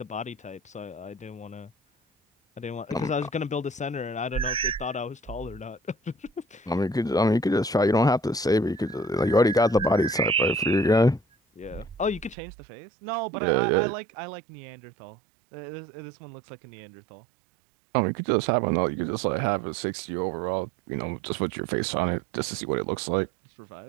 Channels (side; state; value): left; drops out; at 12.4 s